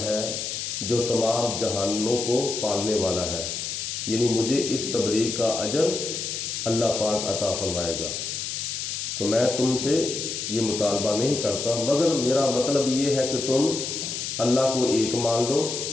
ہے جو تمام جہانوں کو پالنے والا ہے، یعنی مجھے اس تبلیغ کا اجر اللہ پاک عطا فرمائے گا۔ تو میں تم سے یہ مطالبہ نہیں کرتا، مگر میرا مطلب یہ ہے کہ تم اللہ کو ایک مان لو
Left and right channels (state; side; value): noise; left; hiss, 4 dB below the sound